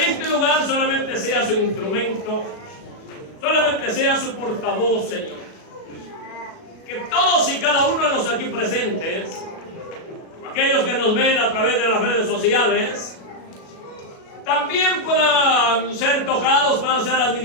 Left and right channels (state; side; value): late; right; 37 ms